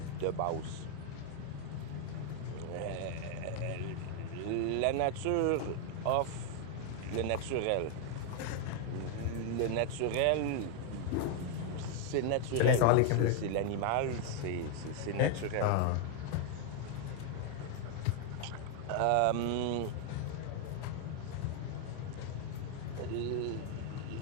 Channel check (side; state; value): both; different; correlation 0.00